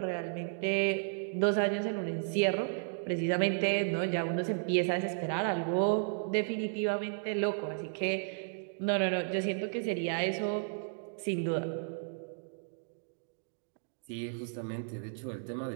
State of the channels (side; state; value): left; silent; digital silence